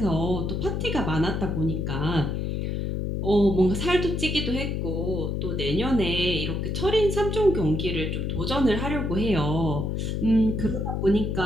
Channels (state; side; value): noise; left; hum, 1 dB below the sound